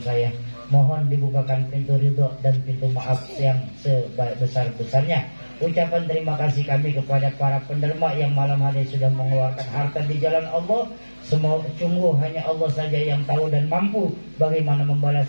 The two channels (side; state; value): both; inverted; correlation -1.00